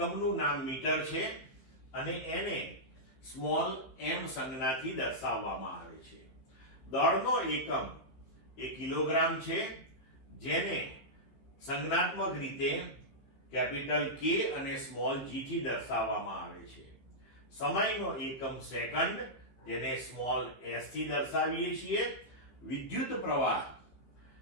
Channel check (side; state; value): right; late; 15 ms